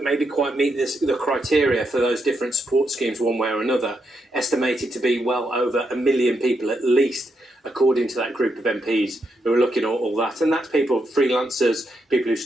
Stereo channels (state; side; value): normal; both; correlation 0.82